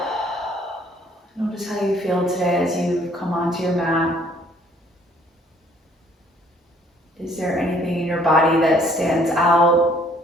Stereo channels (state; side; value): normal; both; correlation 0.60